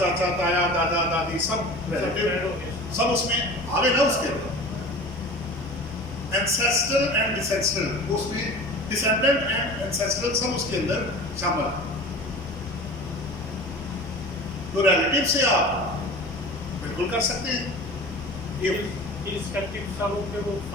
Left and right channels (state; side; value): noise; left; hum, 18 dB below the sound